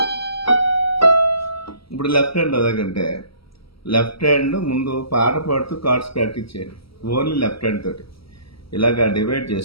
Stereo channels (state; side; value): late; right; 0.75 ms